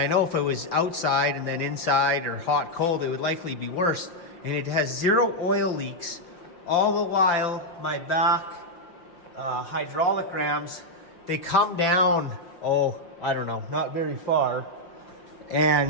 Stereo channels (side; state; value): right; late; 5.7 ms